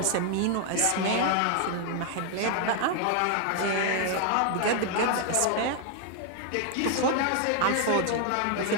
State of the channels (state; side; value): different; both; correlation 0.00